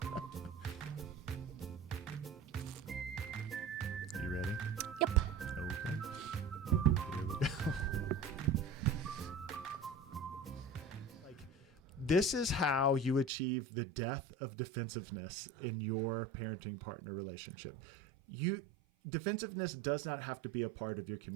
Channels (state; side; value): drops out; left; at 13.3 s